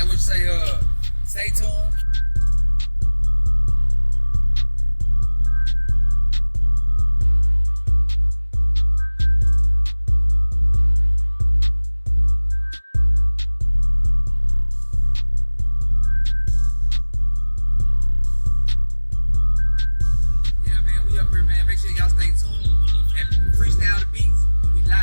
what you say? Stay tuned. Make sure y'all stay tuned and freestyle the beats. We live,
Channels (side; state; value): both; inverted; correlation -1.00